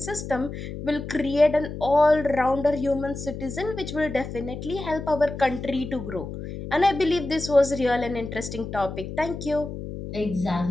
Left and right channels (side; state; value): left; noise; hum, 8 dB below the sound